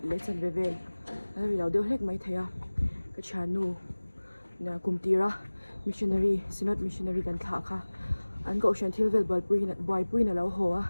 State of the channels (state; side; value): inverted; both; correlation -1.00